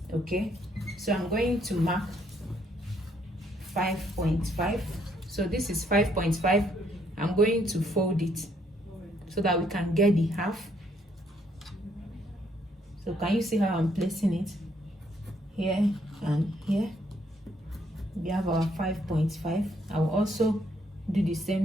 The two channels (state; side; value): normal; both; correlation 0.70